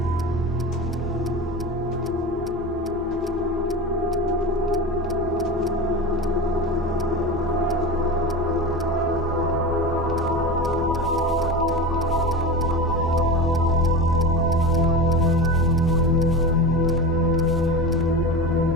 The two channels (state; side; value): normal; both; correlation 0.27